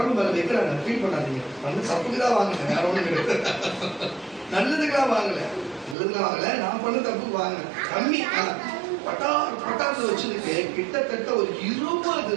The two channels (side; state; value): left; drops out; at 6.0 s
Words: மேல வைக்கிறாங்க. ஃபீல் பண்ணாதீங்க, வந்து தப்புக்குதான் வாங்குங்க, வேற ஒண்ணு நல்லதுக்கெல்லாம் வாங்கல, நான் பண்ண தப்பு வாங்க கம்மி. பட்டார் பட்டார்னு வச்சிருக்கு. கிட்டத்தட்ட ஒரு